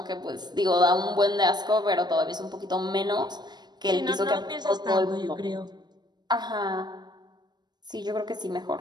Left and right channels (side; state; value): left; late; 0.20 ms